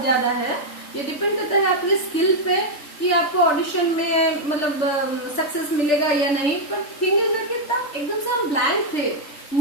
ज्यादा है, ये डिपेंड करता है अपने स्किल पे कि आपको ऑडिशन में मतलब सक्सेस मिलेगा या नहीं. पर थिंग इज कि तब एकदम से हम ब्लैंक थे.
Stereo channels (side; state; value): right; late; 3.4 ms